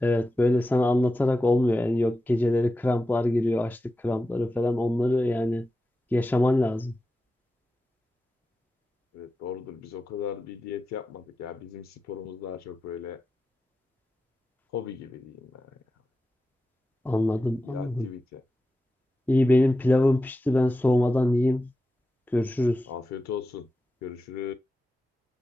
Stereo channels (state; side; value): normal; both; correlation 0.92